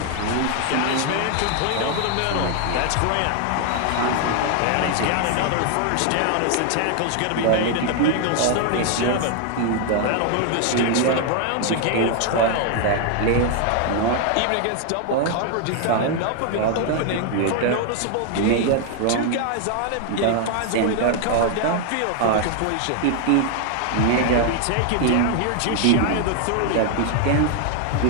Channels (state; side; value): different; both; correlation 0.00